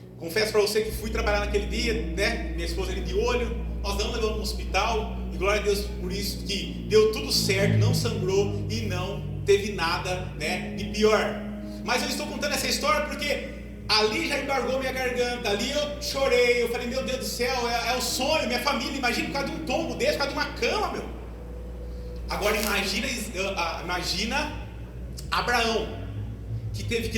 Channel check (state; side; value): identical; both; correlation 1.00